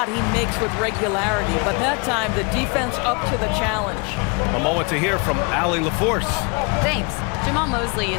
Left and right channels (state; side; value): quieter; right; 32.4 dB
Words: he makes with regularity, but that time the defense up to the challenge. A moment to hear from Allie LaForce. Thanks. Jamal Mosley